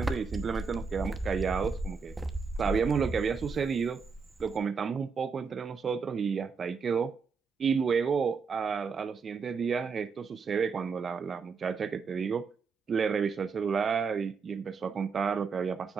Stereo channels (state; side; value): quieter; left; 5.4 dB